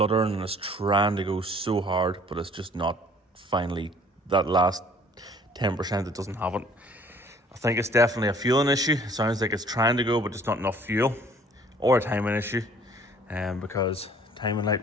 and it's trying to go so hard, but it's just not finally that last 10% that doesn't have it. I think it's definitely a fueling issue. It sounds like it's trying to go, but just not enough fuel, or a timing issue, because timing light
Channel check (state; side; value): normal; both; correlation 0.55